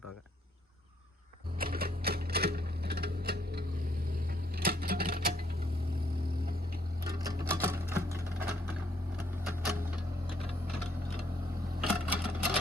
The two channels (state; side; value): normal; both; correlation 0.69